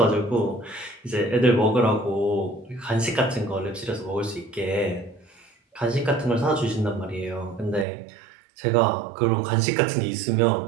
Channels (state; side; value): drops out; left; at 7.9 s